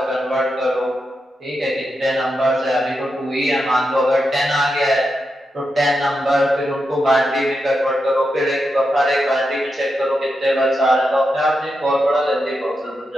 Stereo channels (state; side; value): normal; both; correlation 0.86